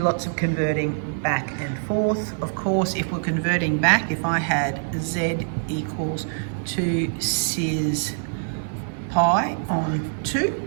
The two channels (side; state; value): left; silent; digital silence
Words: of converting back and forth. Of course, if we're converting back, if I had z equals 2 cis pi on 2,